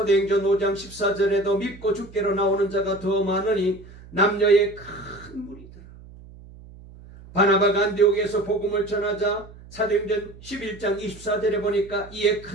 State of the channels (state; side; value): noise; right; hum, 20 dB below the sound